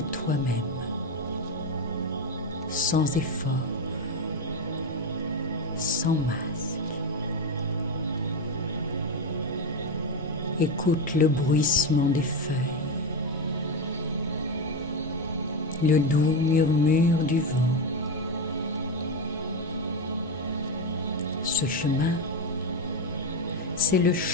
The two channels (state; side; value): normal; both; correlation 0.12